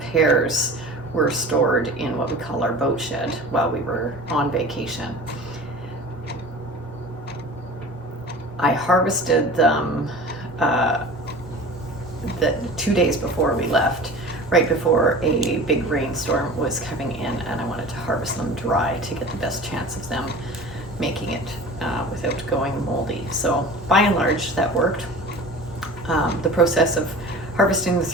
pears were stored in what we call our boat shed while we were on vacation. I harvested them the 2 days before we left, right before a big rainstorm was coming in, and I wanted to harvest them dry to get the best chance of them making it without going moldy. So by and large that worked. The process of harvesting the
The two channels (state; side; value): normal; both; correlation 0.38